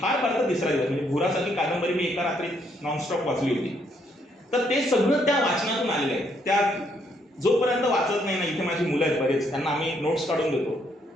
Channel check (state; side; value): normal; both; correlation 0.72